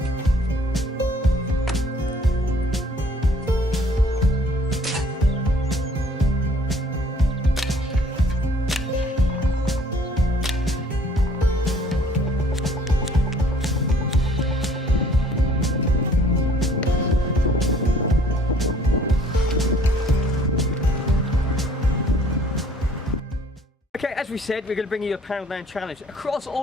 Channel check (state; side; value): normal; both; correlation 0.57